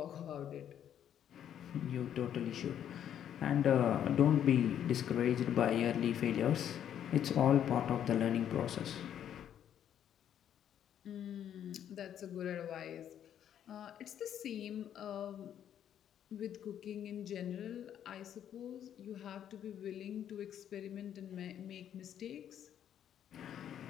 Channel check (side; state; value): right; quieter; 9.9 dB